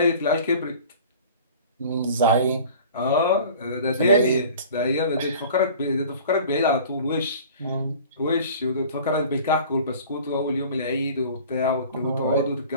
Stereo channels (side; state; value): both; inverted; correlation -0.44